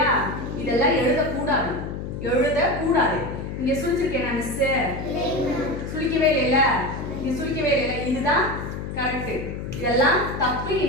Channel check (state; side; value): noise; left; hum, 7 dB below the sound